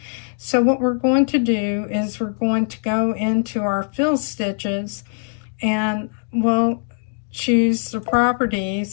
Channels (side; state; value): right; silent; digital silence